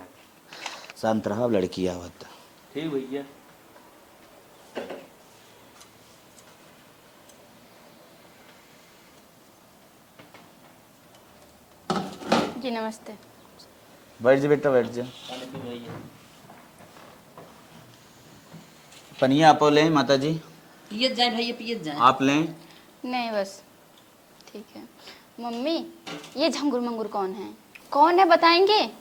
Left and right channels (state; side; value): identical; both; correlation 1.00